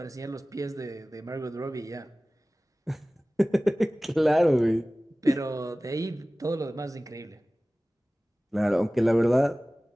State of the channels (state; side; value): normal; both; correlation 0.98